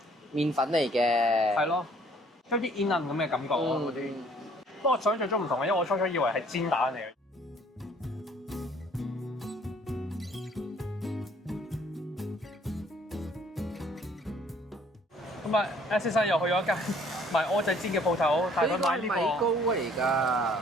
麵粉嚟嘅。係咯，有啲煙韌咁嘅感覺啊嗰啲。不過我想象中唔同嘅，因為我初初以為係煎蛋嚟嘅。咁啊 ，S 先生又去咗一間賣蚵仔煎嘅鋪頭，帶佢買呢米糕個。嚟㗎。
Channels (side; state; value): both; normal; correlation 0.59